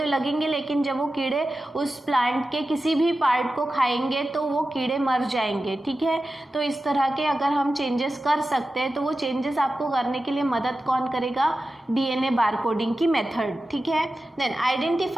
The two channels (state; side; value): normal; both; correlation 0.93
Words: लगेंगे, लेकिन जब वो कीड़े उस प्लांट के किसी भी पार्ट को खाएंगे तो वो कीड़े मर जाएंगे। ठीक है, तो इस तरह के अगर हम चेंजेस कर सकते हैं तो वो चेंजेस आपको करने के लिए मदद कौन करेगा, डीएनए बारकोडिंग की मेथड। ठीक है, देन